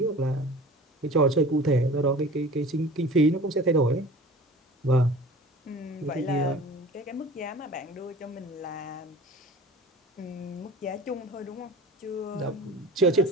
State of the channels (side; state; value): both; normal; correlation 0.41